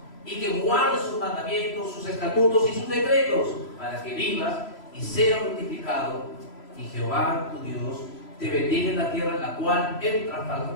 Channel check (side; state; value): right; late; 3.0 ms